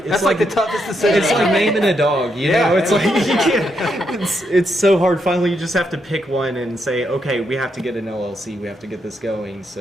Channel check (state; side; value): normal; both; correlation 0.80